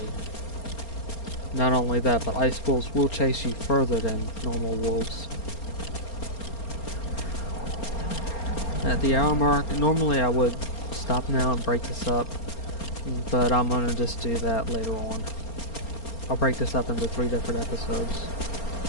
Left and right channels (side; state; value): right; late; 4.3 ms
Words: Not only that, but ice wolves will chase you further than normal wolves. At the hour mark, normally I would stop now and break this up, but I'm going to just do that later on. I'll break this up into 3 different episodes